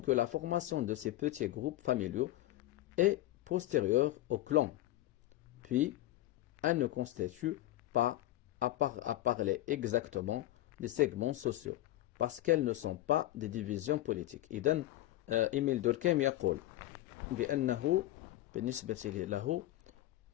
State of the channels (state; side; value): quieter; right; 15.2 dB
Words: la formation de ces petits groupes familiaux est postérieure au clan. Puis, elle ne constitue pas, à parler exactement, des segments sociaux, parce qu'elles ne sont pas des divisions politiques. إذن إيميل دوركهيم يقول بأنه بالنسبة له